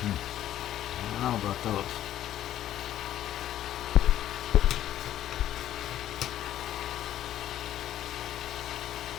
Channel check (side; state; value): right; quieter; 12.1 dB